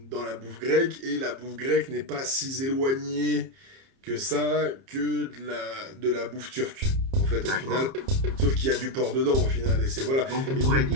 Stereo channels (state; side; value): late; left; 30 ms